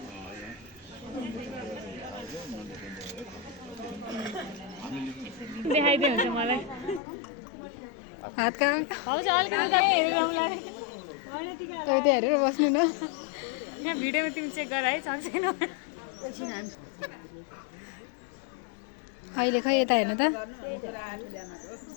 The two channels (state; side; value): drops out; right; at 7.0 s